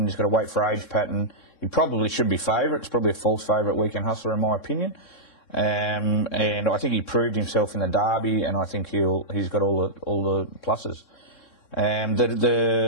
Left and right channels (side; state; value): right; late; 3.6 ms